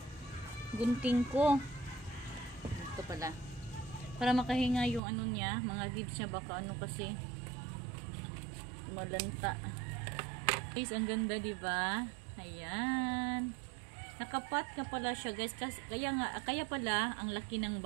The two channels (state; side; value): drops out; left; at 5.0 s